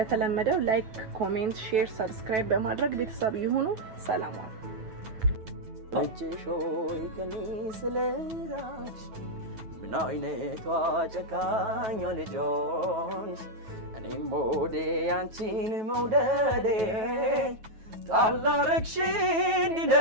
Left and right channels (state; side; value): late; left; 9.2 ms